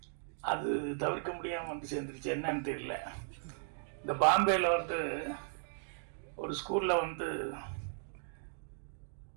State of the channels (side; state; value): left; silent; digital silence